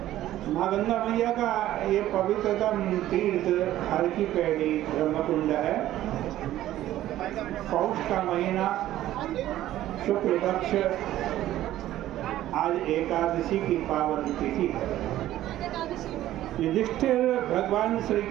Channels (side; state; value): left; quieter; 13.8 dB